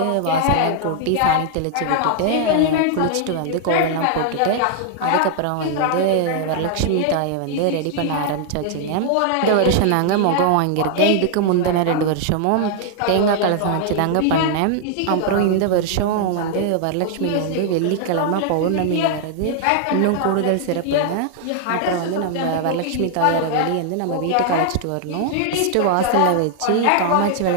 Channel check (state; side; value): different; both; correlation 0.00